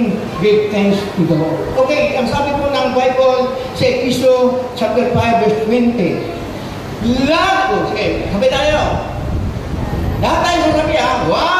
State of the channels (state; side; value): identical; both; correlation 1.00